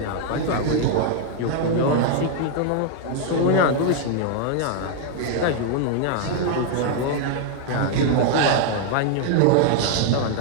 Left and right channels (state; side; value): different; both; correlation 0.00